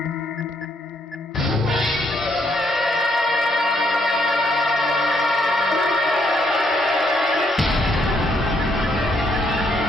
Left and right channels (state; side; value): normal; both; correlation 0.72